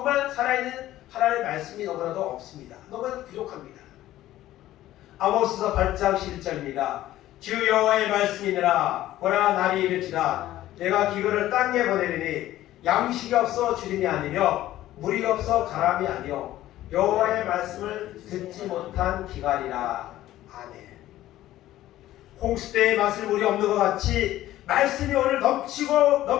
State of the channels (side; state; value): right; quieter; 14.4 dB